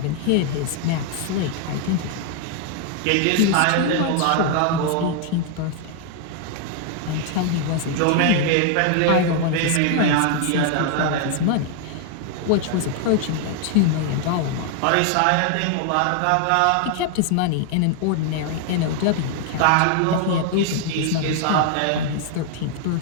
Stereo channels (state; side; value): different; both; correlation 0.00